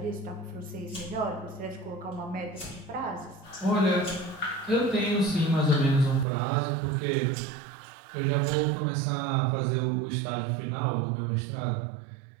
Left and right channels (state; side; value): drops out; left; at 6.2 s